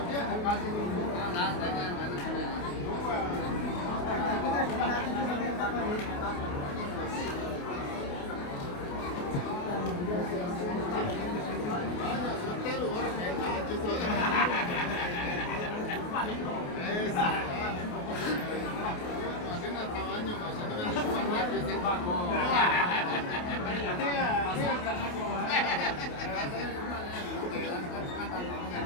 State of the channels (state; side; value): late; right; 28 ms